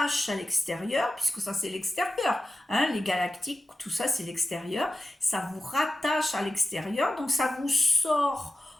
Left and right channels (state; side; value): normal; both; correlation 0.93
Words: à l'extérieur, puisque ça, c'est l'extérieur. Hein, les galactiques, tout ça, c'est l'extérieur. Ça vous rattache à l'extérieur, donc ça vous sort